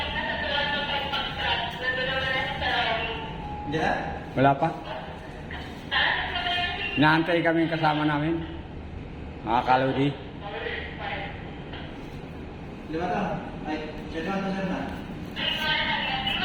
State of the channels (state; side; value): identical; both; correlation 1.00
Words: Hindi na? Wala pa. Inaantay kami yung kasama namin. Mga kalodi. Lima to? Ay, siya na, siya na.